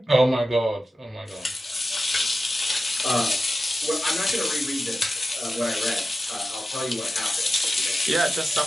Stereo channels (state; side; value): normal; both; correlation 0.92